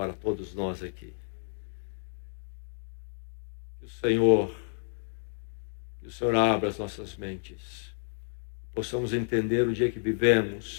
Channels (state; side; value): silent; right; digital silence